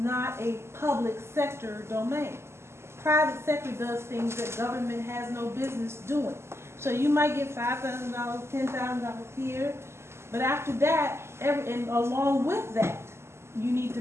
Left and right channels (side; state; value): left; late; 0.13 ms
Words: a public sector domain. Private sector does things that government has no business doing. So you might get $5,000, $10,000 here, but after that, and along with that, you need